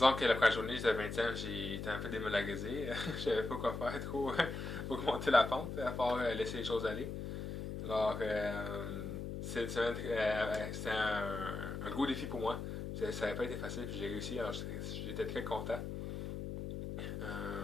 que la première journée, j'étais 20e, j'ai été un peu démoralisé. Je savais pas quoi faire trop pour monter la pente, à part laisser les choses aller. Alors, c'était un gros défi pour moi. Ça n'avait pas été facile, puis j'ai réussi, alors j'étais très content.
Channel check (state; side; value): noise; left; hum, 5 dB below the sound